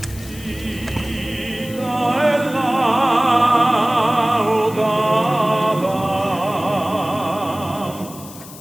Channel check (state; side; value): noise; left; hiss, 17 dB below the sound